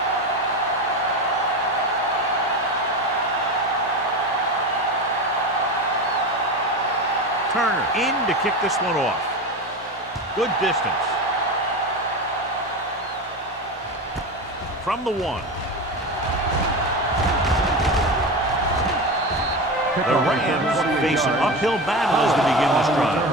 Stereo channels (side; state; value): both; normal; correlation 0.24